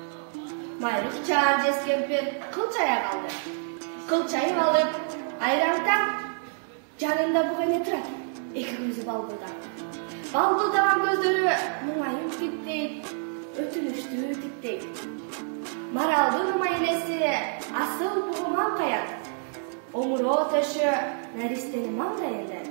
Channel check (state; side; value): silent; left; 58 dB below the other